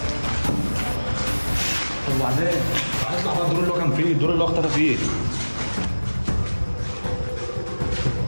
طب وبعدين؟ هيطلع بقى الدور اللي هو كان فيه، الدور اللي هو اختفى فيه.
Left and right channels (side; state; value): both; inverted; correlation -1.00